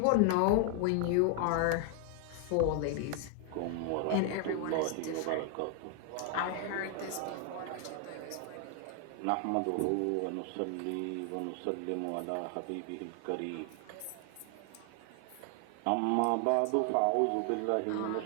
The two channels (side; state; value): both; different; correlation 0.00